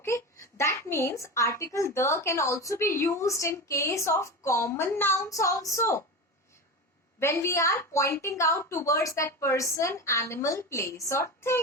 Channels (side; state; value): both; normal; correlation 0.24